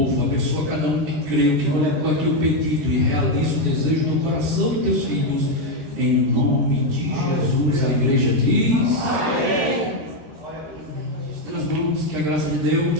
abençoa cada um que creu, que colocou aqui o pedido e realiza o desejo do coração dos teus filhos, em nome de Jesus. A igreja diz: amém. Nós vamos, que a graça de Deus,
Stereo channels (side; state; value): left; late; 13 ms